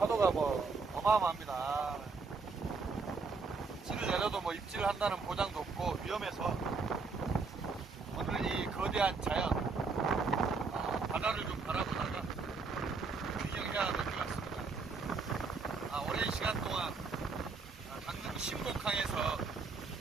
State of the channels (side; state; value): left; quieter; 4.5 dB